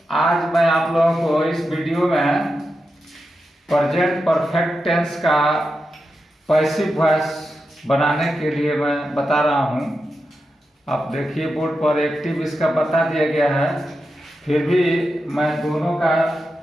आज मैं आप लोगों को इस वीडियो में प्रेजेंट परफेक्ट टेंस का पैसिव वॉइस बनाने के लिए मैं बता रहा हूँ। आप देखिए बोर्ड पर एक्टिव इसका बता दिया गया है, फिर भी मैं दोनों का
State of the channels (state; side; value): normal; both; correlation 0.89